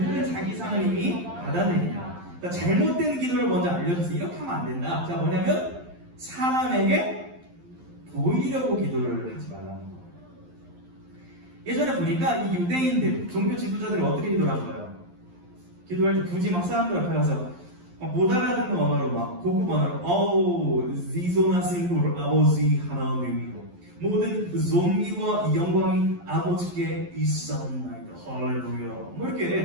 자기 상을 이미 받아내니라. 그러니까 잘못된 기도를 먼저 알려주세요. 이렇게 하면 안 된다. 자, 뭐냐면 사람에게 보이려고 기도를 하지 말라는 거. 예전에 보니까 이 유대인들, 종교 지도자들이 어떻게 기도를 한 거예요? 기도할 때 굳이 막 사람들 앞에 가서 못 알아듣는 언어로 막 고급 언어로 지소나신으로 아버지 하나님이요 모든 존귀와 영광이 아버지께 있사옵나이다. 할렐루야. 뭐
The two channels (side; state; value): left; late; 11 ms